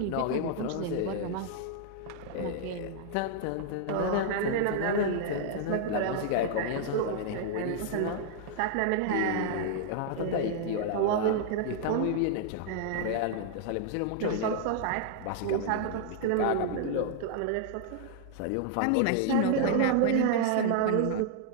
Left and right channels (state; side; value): different; both; correlation -0.01